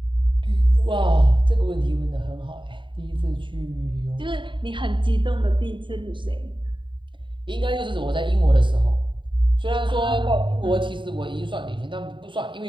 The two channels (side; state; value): left; late; 0.23 ms